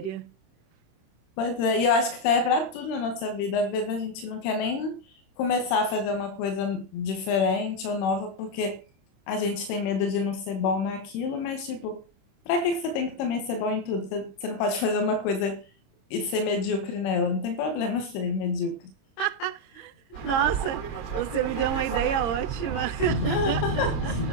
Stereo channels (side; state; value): right; late; 26 ms